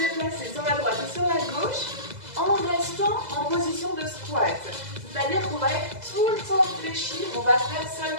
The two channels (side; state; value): left; late; 2.0 ms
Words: sur la droite et sur la gauche en restant en position de squat. C'est-à-dire qu'on va être tout le temps fléchi, on va faire